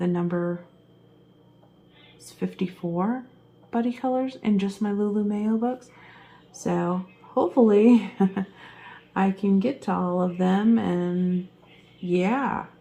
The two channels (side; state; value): both; identical; correlation 1.00